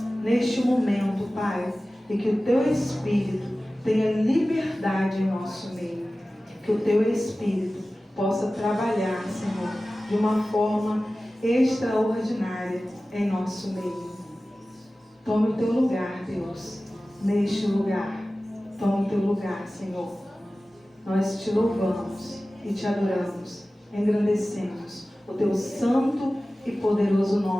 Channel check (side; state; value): both; normal; correlation 0.96